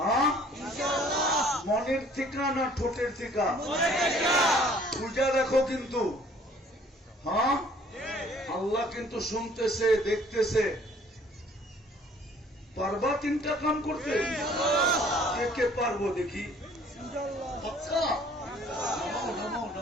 মনের থেকে না ঠোঁটের থেকে? বুঝা দেখো কিন্তু। হ্যাঁ, আল্লাহ কিন্তু শুনতেছে, দেখতেছে। পারবা তিনটা কাম করতে? কে কে পারবো দেখি?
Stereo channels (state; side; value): normal; both; correlation 0.56